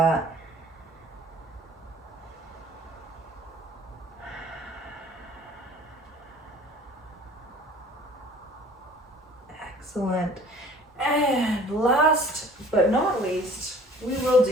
Excellent. And last but not least, we will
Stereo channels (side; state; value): both; normal; correlation 0.50